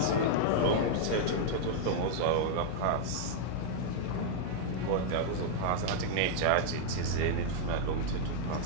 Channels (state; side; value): different; both; correlation -0.01